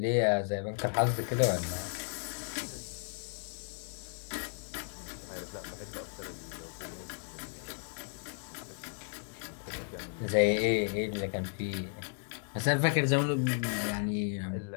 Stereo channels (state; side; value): silent; right; 55 dB below the other